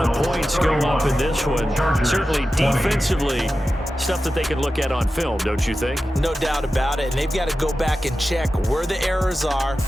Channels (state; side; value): normal; both; correlation 0.93